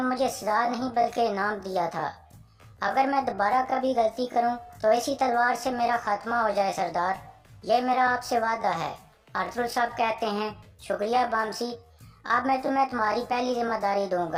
मुझे सजा नहीं बल्कि इनाम दिया था। अगर मैं दोबारा कभी गलती करूं तो इसी तलवार से मेरा खात्मा हो जाए सरदार, ये मेरा आपसे वादा है। अरतुल साहब कहते हैं, शुक्रिया बामसी, अब मैं तुम्हें तुम्हारी पहली जिम्मेदारी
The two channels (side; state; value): both; identical; correlation 1.00